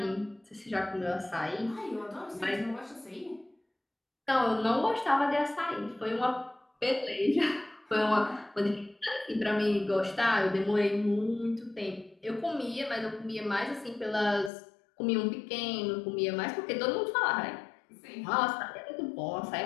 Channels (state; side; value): drops out; right; at 14.5 s